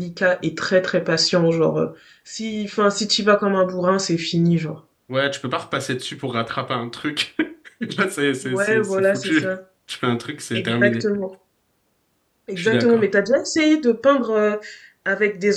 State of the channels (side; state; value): both; identical; correlation 1.00